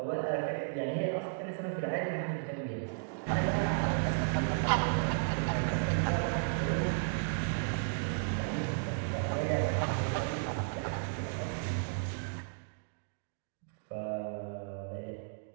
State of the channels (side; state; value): left; silent; digital silence